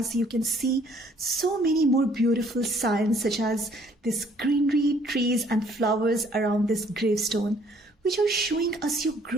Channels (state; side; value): normal; both; correlation 0.61